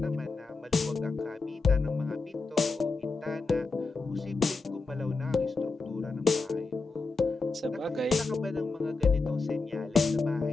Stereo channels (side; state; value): right; quieter; 3.9 dB